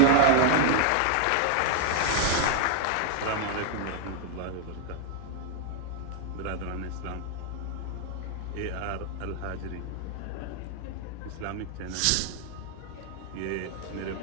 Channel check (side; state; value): both; different; correlation 0.00